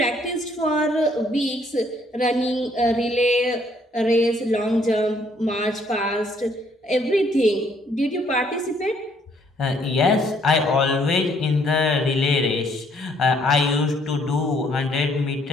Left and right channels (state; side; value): normal; both; correlation 0.66